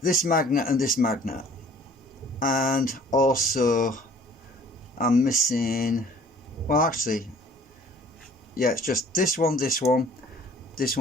this magnet and this magnet, and also I'm missing, well actually, yeah, it's just this one, this one, this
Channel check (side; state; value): both; normal; correlation 0.52